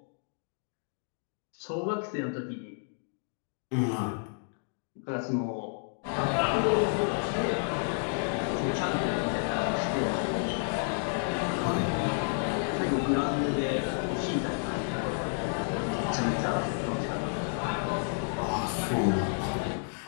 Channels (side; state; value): right; silent; digital silence